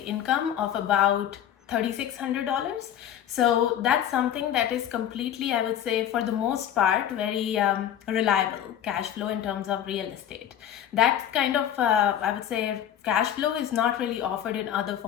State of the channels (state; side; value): quieter; right; 10.3 dB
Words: of about $3,600. So that's something that is completely, I would say, for the most part, very reliable cash flow in terms of real estate. That kind of, I would say, cash flow is not really offered in other